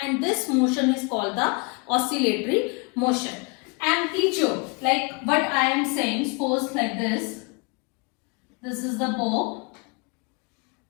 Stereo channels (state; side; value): quieter; right; 31.3 dB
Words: and this motion is called the oscillatory motion. Amplitude, like what I am saying, suppose like this. This is the bow.